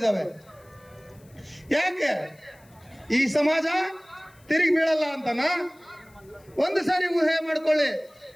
ಯಾಕೆ? ಈ ಸಮಾಜ ತಿರುಗಿ ಬೀಳಲ್ಲ ಅಂತನ? ಒಂದು ಸಾರಿ ಊಹೆ ಮಾಡ್ಕೊಳ್ಳಿ,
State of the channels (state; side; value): noise; left; hiss, 30 dB below the sound